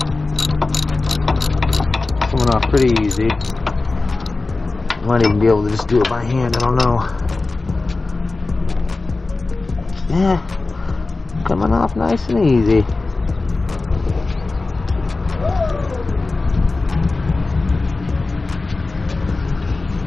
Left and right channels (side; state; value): right; quieter; 3.5 dB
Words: Coming off pretty easy. Might even be able to just do it by hand, I don't know. Yeah, coming off nice and easy.